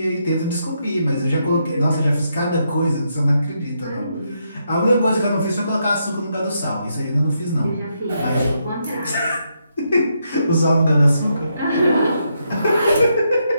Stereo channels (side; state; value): both; inverted; correlation -0.79